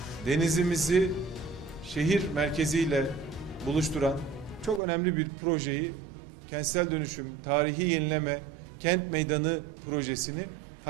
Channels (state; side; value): drops out; left; at 4.8 s